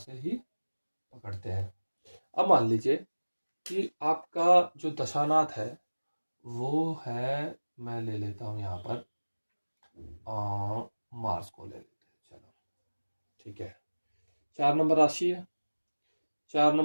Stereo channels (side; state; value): both; inverted; correlation -1.00